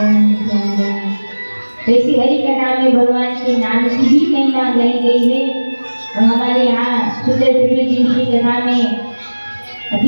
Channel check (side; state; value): both; inverted; correlation -1.00